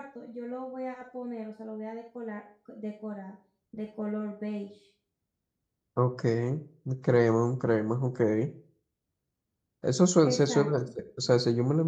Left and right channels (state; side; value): identical; both; correlation 1.00